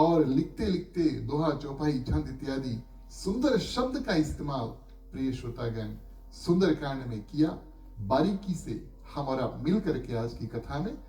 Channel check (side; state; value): both; identical; correlation 1.00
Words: लिखते लिखते दोहा, चौपाई, छंद इत्यादि सुंदर शब्द का इस्तेमाल प्रिय श्रोतागण सुंदरकांड में किया। बारीकी से हम और आप मिल करके आज की कथा में